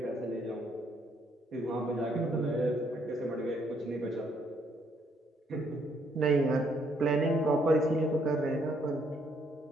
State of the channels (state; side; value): normal; both; correlation 0.70